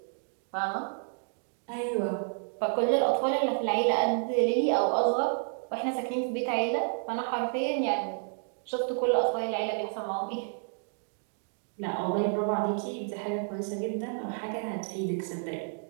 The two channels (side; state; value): left; silent; 58 dB below the other